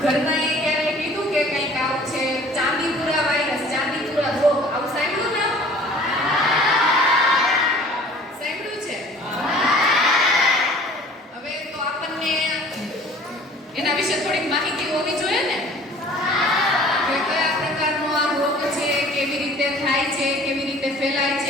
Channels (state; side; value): normal; both; correlation 0.49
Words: ઘરમાં એ ક્યારે કીધું કે કંઈક આવું છે ચાંદીપુરા વાયરસ, ચાંદીપુરા રોગ, આવું સાંભળ્યું ને? સાંભળ્યું છે? હવે તો આપણને એના વિશે થોડીક માહિતી હોવી જોઈએ ને કે કયા પ્રકારનો આ રોગ છે, કેવી રીતે થાય છે, કેવી રીતે ફેલાય